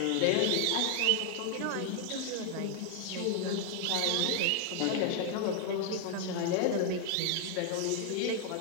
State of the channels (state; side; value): different; both; correlation 0.00